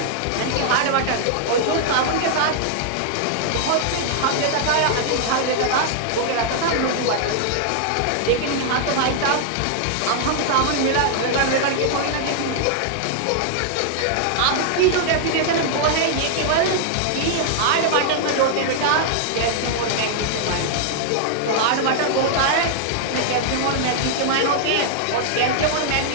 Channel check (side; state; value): both; different; correlation -0.01